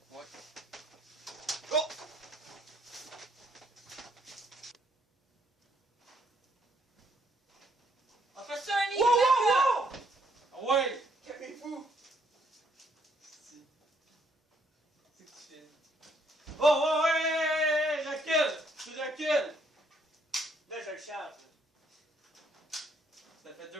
Ouais. Oh! On fait ça un lit! Wow, wow, wow! Ah ouais! Calmez-vous! C'est que tu fais. Oh, ouais! Recule! Tu recules! Là, je le charge. Ça fait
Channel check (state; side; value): normal; both; correlation 0.70